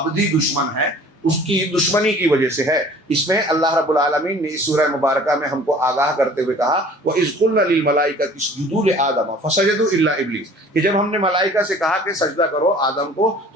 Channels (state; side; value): normal; both; correlation 0.49